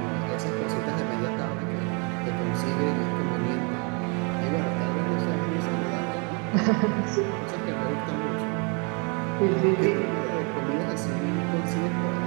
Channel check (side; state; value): left; quieter; 34.3 dB